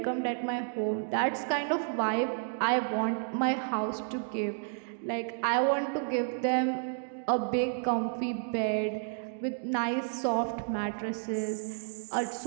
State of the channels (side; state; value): left; silent; digital silence